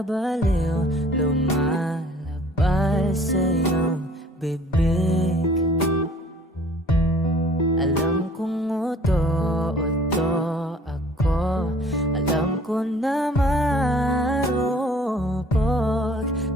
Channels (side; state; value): both; normal; correlation 0.53